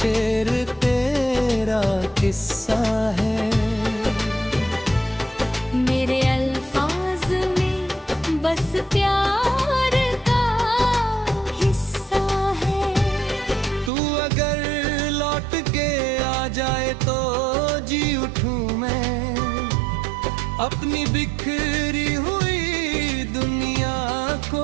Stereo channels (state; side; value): drops out; left; at 13.9 s